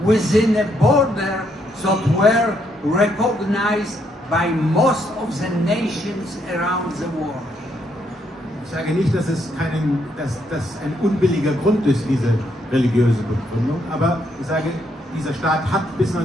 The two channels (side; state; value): both; normal; correlation 0.74